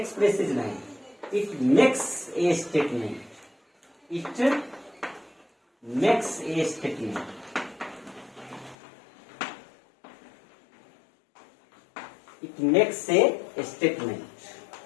नहीं, it makes a statement. It makes a statement. It makes a statement.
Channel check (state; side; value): drops out; right; at 8.8 s